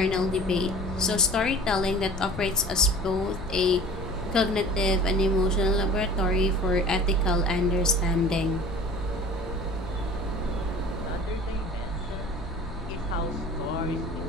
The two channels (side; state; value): left; noise; rumble, 12 dB below the sound